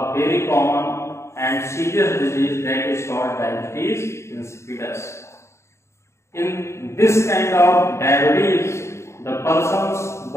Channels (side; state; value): right; late; 0.13 ms